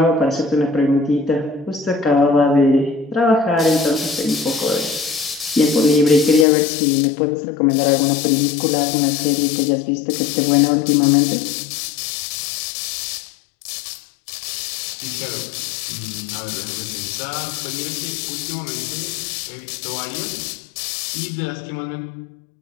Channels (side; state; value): right; drops out; at 6.5 s